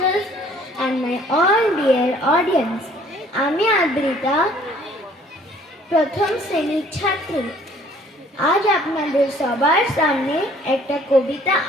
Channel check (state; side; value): normal; both; correlation 0.57